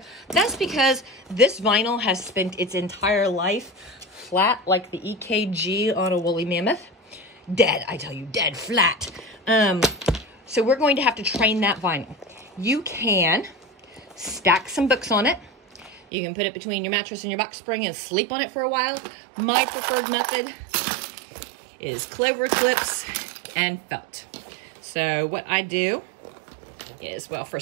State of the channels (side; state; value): left; drops out; at 16.0 s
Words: That's because this vinyl has spent its entire life flat like the EKG on a woolly mammoth. Dead, I tell you, dead flat. So we're going to have to train that vinyl. You can stack some books on it. You can put it between your mattress and your box spring and sleep on it for a while. My preferred method is clover clips and felt. So what I do is, well,